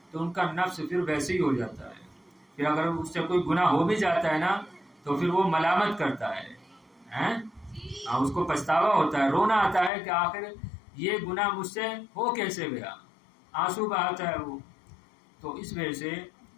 تو ان کا نفس پھر ویسے ہی ہو جاتا ہے. پھر اگر اس سے کوئی گناہ ہو بھی جاتا ہے نا تو پھر وہ ملامت کرتا ہے، اس کو پچھتاوا ہوتا ہے، رونا آتا ہے کہ آخر یہ گناہ مجھ سے ہو کیسے گیا، آنسو بہاتا ہے وہ. تو اس وجہ سے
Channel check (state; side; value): drops out; right; at 9.9 s